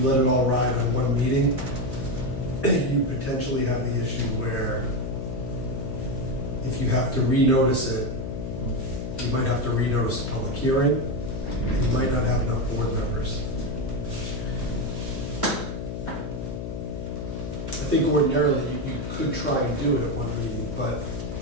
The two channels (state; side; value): noise; left; hum, 5 dB below the sound